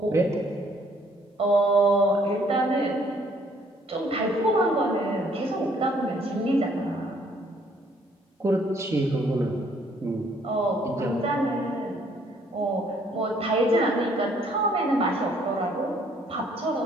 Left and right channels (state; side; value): normal; both; correlation 0.63